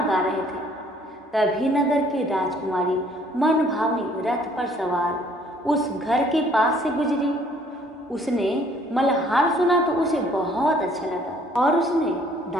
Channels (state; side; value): normal; both; correlation 0.60